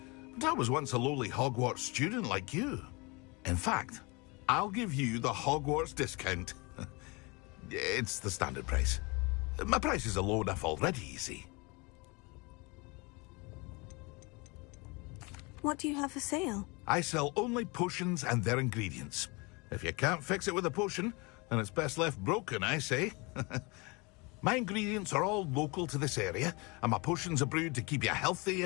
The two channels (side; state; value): right; quieter; 27.6 dB